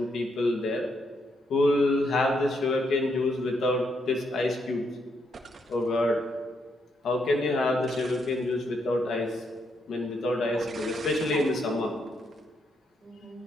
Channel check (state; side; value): normal; both; correlation 0.77